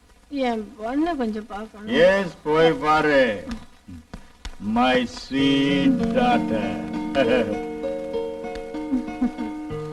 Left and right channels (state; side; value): identical; both; correlation 1.00